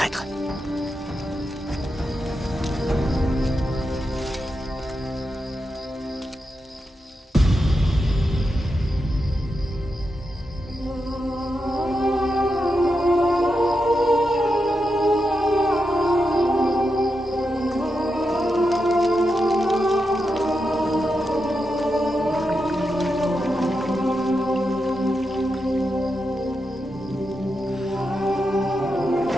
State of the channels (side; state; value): both; normal; correlation 0.87